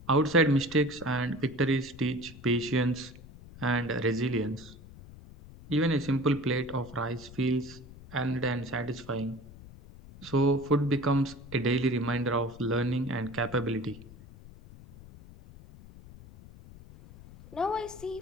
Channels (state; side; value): noise; left; rumble, 18 dB below the sound